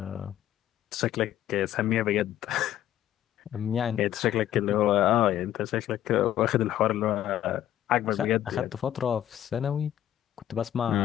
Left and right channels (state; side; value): quieter; right; 12.0 dB